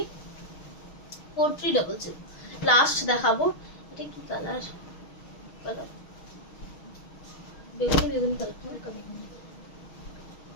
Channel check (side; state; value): right; late; 6.4 ms